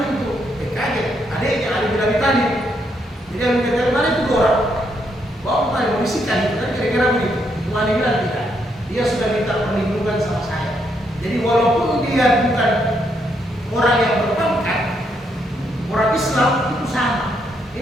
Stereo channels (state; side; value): normal; both; correlation 0.76